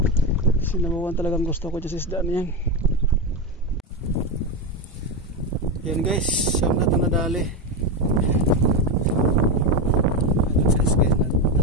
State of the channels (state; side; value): normal; both; correlation 0.13